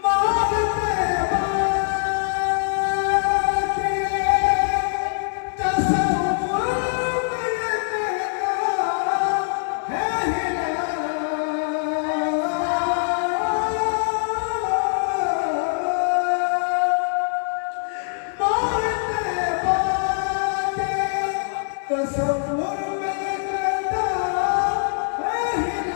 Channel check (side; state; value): right; silent; 63 dB below the other